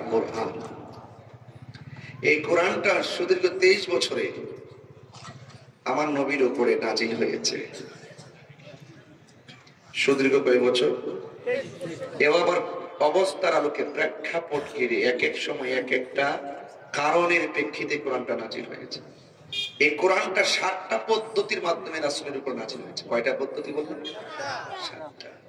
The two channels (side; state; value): both; identical; correlation 1.00